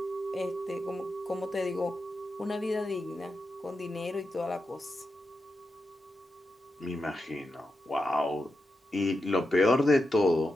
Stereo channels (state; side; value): normal; both; correlation 0.88